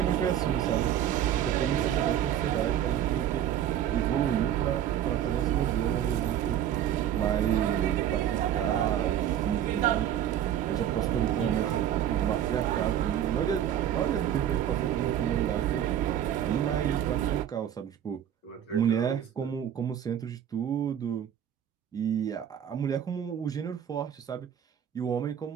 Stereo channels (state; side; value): quieter; left; 10.3 dB